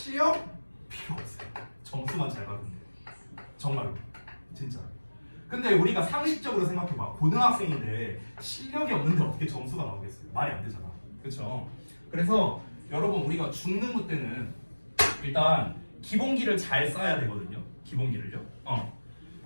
필요 없어요. 점수만 잘 받으면 돼요. 정말로 진짜. 근데 우리가 상식적으로 생각해봐. 고등학생인데 실력이 없는데 어떻게 점수가 나오겠어요? 말이 안 되잖아. 그렇죠? 그래서 여러분 우리가 중등부 때는 일단 기본기를 잘 쌓아야 되거든요. 기본기를요.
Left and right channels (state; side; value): inverted; both; correlation -1.00